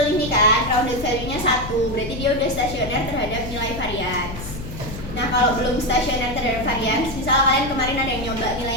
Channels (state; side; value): noise; left; hum, 10 dB below the sound